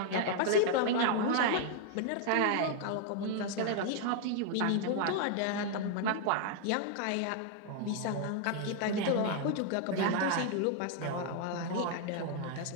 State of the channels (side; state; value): both; different; correlation 0.00